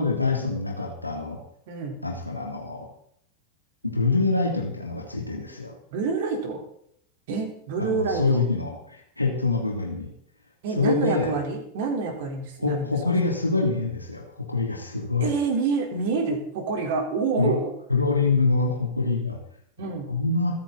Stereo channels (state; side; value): inverted; both; correlation -0.43